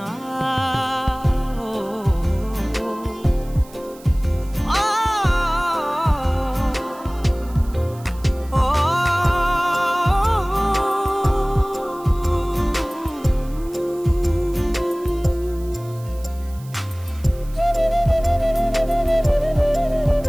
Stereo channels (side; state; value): right; noise; hiss, 23 dB below the sound